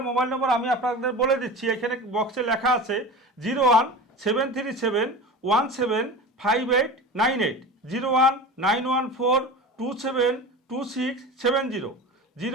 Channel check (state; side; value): normal; both; correlation 0.32